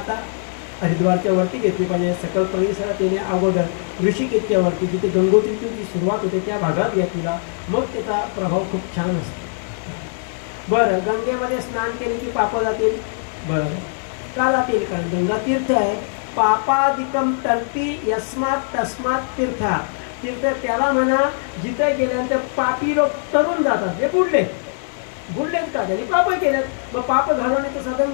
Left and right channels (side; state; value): right; silent; digital silence